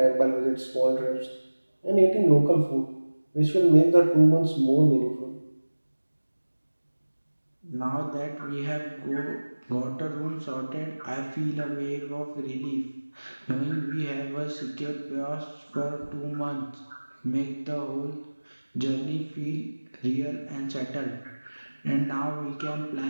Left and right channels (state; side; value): inverted; both; correlation -1.00